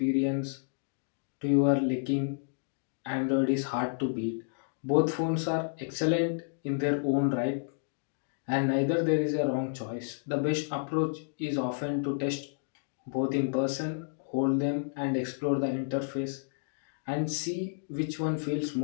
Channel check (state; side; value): silent; right; digital silence